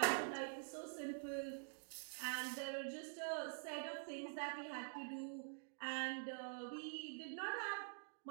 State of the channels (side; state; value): left; silent; digital silence